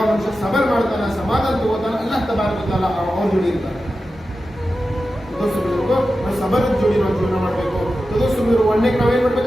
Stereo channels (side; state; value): both; normal; correlation 0.92